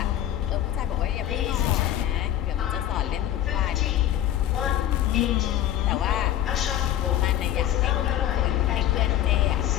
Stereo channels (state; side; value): quieter; right; 12.0 dB